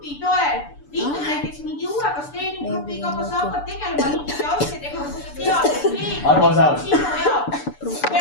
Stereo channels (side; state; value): right; late; 6.9 ms